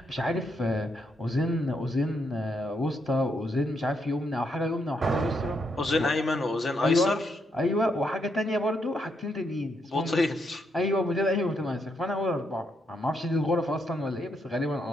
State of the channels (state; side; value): normal; both; correlation 0.78